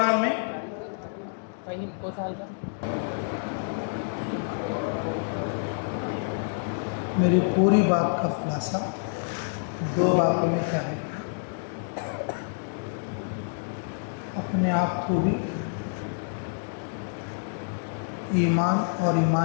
میں میری پوری بات کا خلاصہ 2 باتوں میں کیا ہے: اپنے آپ کو بھی ایمان اور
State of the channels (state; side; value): silent; right; digital silence